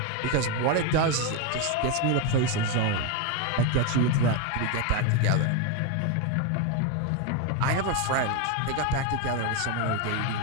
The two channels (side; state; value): both; different; correlation 0.02